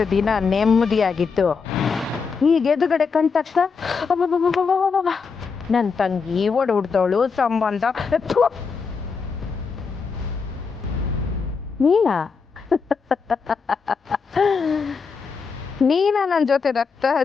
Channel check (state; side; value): quieter; right; 5.3 dB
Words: ದಿನ ನೆಮ್ಮದಿಯಾಗಿತ್ತು. ಈಗ ಎದುರುಗಡೆ ಕಂಡ ತಕ್ಷಣ ನನ್ನ ತಂಗಿ ಹೊಡ್ದವಳು ಸಂಬಂಧ. ನೀನಾ ನನ್ನ ಜೊತೆ ರಕ್ತ